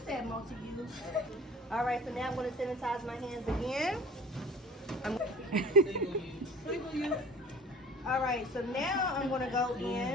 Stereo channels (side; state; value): both; normal; correlation 0.44